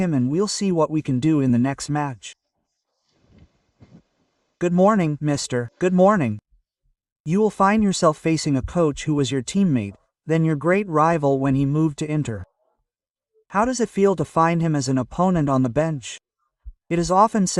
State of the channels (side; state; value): both; identical; correlation 1.00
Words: and we'll see what we can do in the next match. Good morning, mister. Good morning. You will find yourself facing a coach who was your teammate, then your great rival when he moved to Inter. How does it feel to find him as an opponent on the bench? It is often